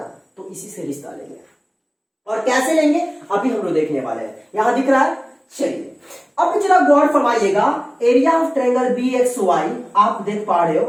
तो इसी से रिश्ता लेंगे। और कैसे लेंगे अभी हम लोग देखने वाले हैं। यहां दिख रहा है, चलिए अब जरा गौर फरमाइएगा, area of triangle B X Y आप देख पा रहे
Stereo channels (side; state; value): both; identical; correlation 1.00